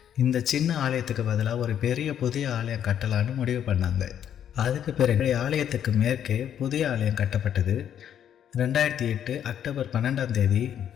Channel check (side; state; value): right; quieter; 9.6 dB